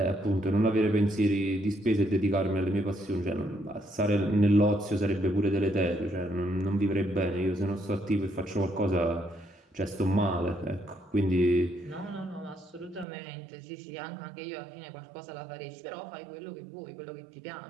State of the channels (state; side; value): drops out; left; at 13.1 s